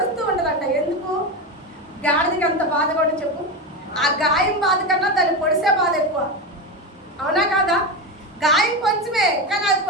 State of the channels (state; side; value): normal; both; correlation 0.17